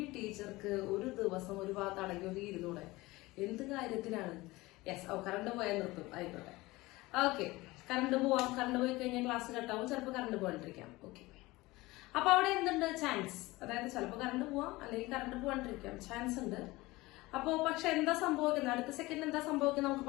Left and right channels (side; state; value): right; quieter; 20.6 dB